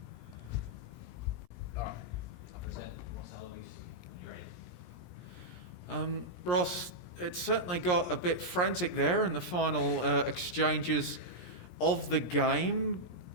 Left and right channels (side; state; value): right; late; 17 ms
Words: All right, I'll present Ross Aloisi. You ready? Ross, it certainly got a bit frantic there in the final exchanges of the game.